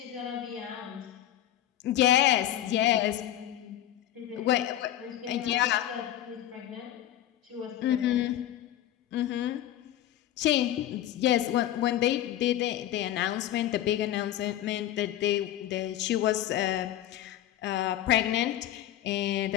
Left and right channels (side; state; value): right; quieter; 12.7 dB